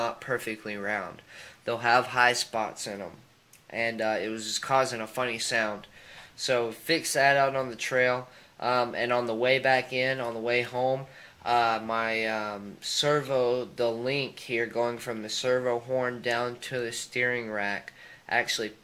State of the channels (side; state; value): both; identical; correlation 1.00